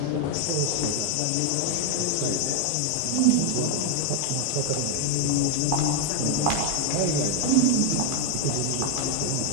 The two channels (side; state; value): both; different; correlation 0.00